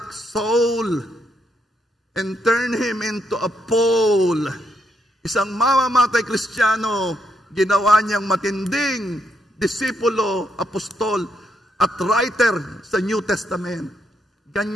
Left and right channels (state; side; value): normal; both; correlation 0.77